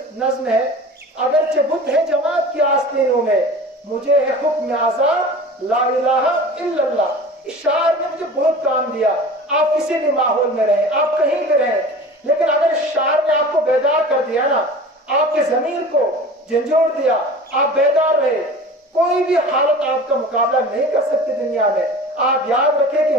नज्म है, अगरचे बुत है जमात की आस्तीनों में, मुझे है हुक्म आजाद ला इलाहा इल्लल्लाह। इस शायर ने मुझे बहुत काम दिया। आप किसी भी माहौल में रहें, आप कहीं भी रहें, लेकिन अगर इस शायर ने आपको बेदार कर दिया ना, आपके जमीर को झंझोड़ दिया, आप बेदार रहे, कोई भी हालत आपका मुकाबला नहीं कर सकती दुनिया में। आप याद रखें कि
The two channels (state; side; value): normal; both; correlation 0.38